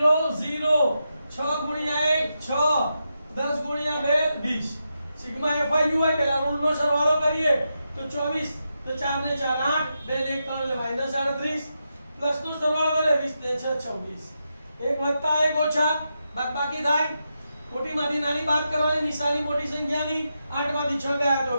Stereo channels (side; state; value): both; inverted; correlation -0.86